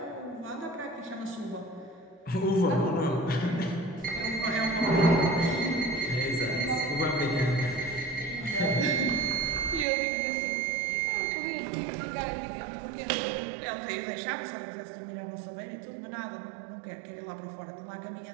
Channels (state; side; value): drops out; left; at 9.9 s